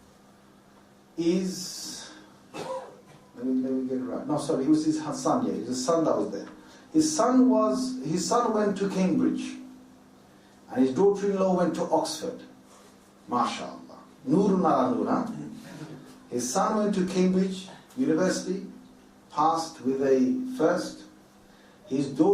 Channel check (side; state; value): both; identical; correlation 1.00